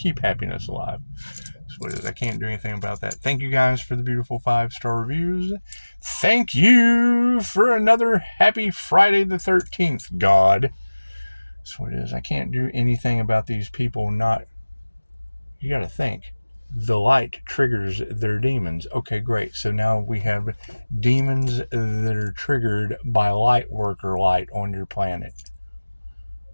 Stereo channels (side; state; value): both; inverted; correlation -1.00